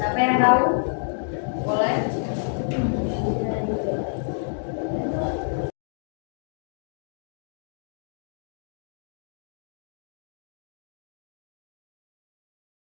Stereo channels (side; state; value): right; silent; digital silence